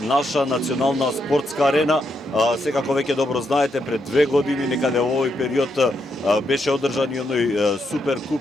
наша национална спортска арена. Секако веќе добро знаете, пред 2 години некаде во овој период беше одржан и оној супер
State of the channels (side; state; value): both; normal; correlation 0.80